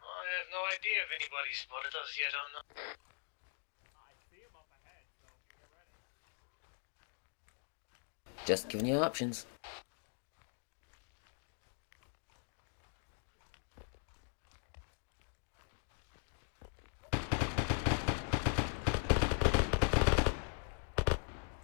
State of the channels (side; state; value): right; silent; 51 dB below the other